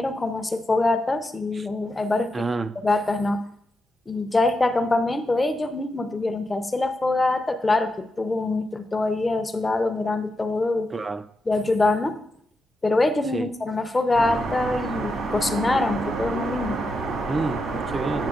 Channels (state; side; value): normal; both; correlation 0.86